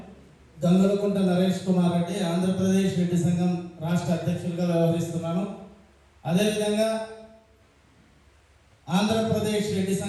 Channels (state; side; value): identical; both; correlation 1.00